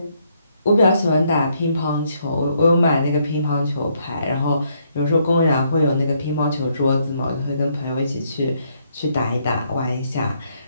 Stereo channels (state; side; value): inverted; both; correlation -0.72